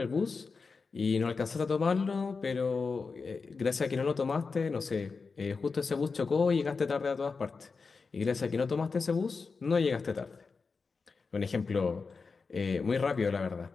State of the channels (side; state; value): right; quieter; 4.7 dB